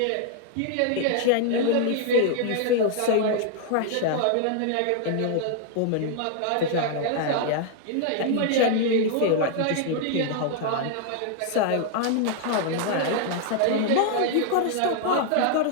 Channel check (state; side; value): different; both; correlation 0.00